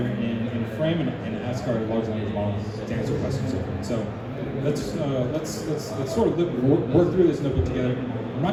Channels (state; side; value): identical; both; correlation 1.00